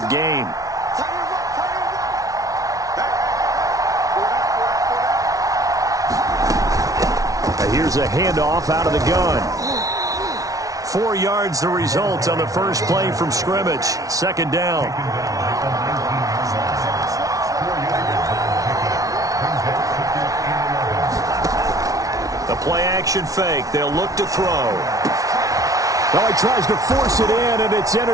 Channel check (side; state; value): left; late; 0.17 ms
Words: game. Here's a handoff out of the gun. 4 yards the result on the first play from scrimmage. 2nd down. The play action fake. They'll look to throw. Oh, he tries to force it in, and it's